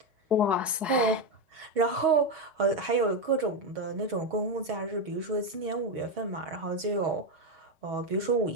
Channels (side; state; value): both; normal; correlation 0.09